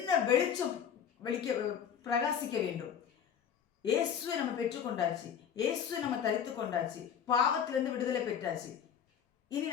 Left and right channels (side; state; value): right; quieter; 8.2 dB